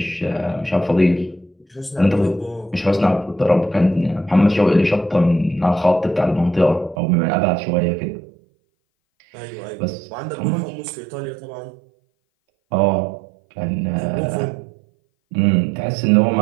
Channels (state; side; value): drops out; left; at 7.0 s